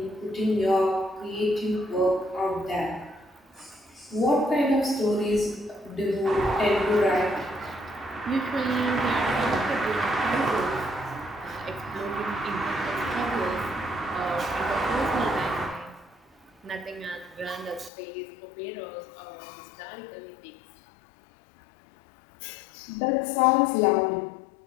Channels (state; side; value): drops out; right; at 17.9 s